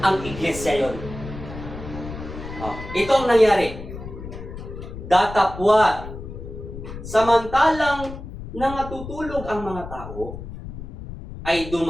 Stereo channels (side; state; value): left; noise; rumble, 11 dB below the sound